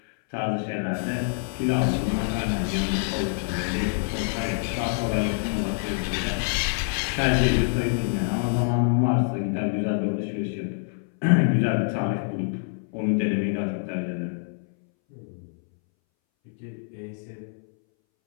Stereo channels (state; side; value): silent; right; 61 dB below the other